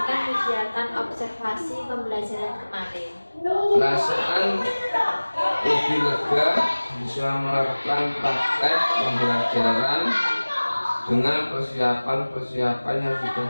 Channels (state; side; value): inverted; both; correlation -1.00